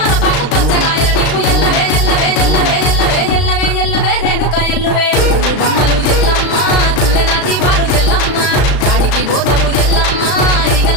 పచ్చగాయలు నీకు ఎల్లవే ఎల్లవే ఎల్లవే ఎల్లవే ఎల్లవే ఎల్లవే రేణుక ఎల్లువే బొమ్మలు ఎల్లమ్మ గుల్లెన దీపాలు ఎల్లమ్మ చాడికి పోతవు ఎల్లమ్మ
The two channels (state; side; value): late; right; 35 ms